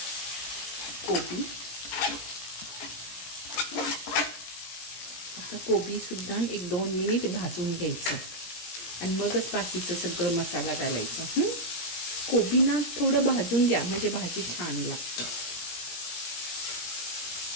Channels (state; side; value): late; right; 17 ms